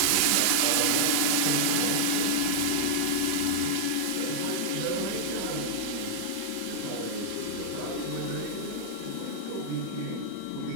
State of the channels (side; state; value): both; different; correlation -0.01